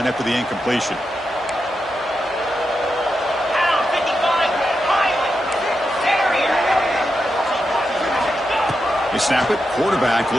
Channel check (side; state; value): both; normal; correlation 0.87